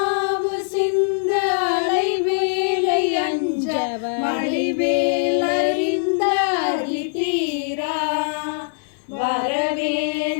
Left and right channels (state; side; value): silent; right; digital silence